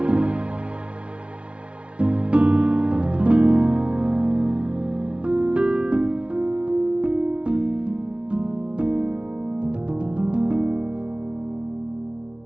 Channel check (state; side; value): late; left; 0.059 ms